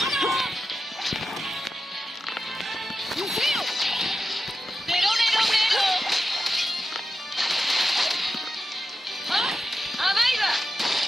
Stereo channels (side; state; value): both; normal; correlation 0.91